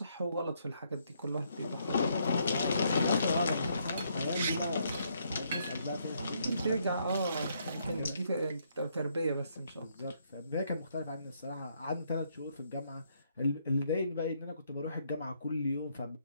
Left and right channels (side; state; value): both; inverted; correlation -0.73